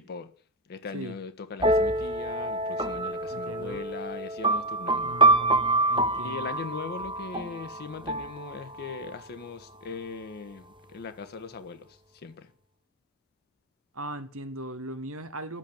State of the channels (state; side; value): normal; both; correlation 0.04